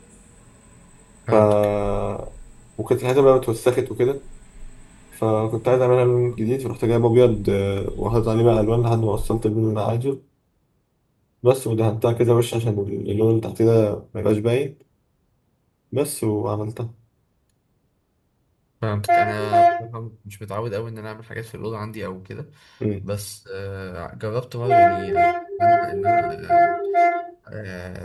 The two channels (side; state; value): both; identical; correlation 1.00